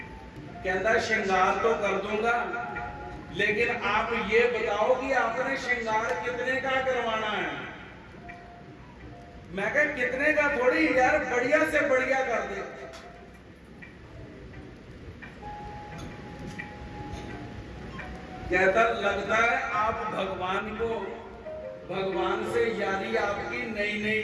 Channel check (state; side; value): identical; both; correlation 1.00